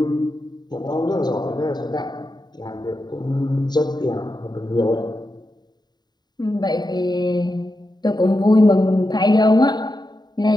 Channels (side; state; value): right; late; 0.20 ms